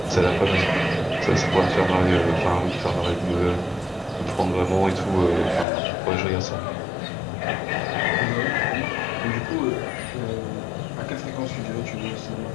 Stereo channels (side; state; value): right; drops out; at 5.7 s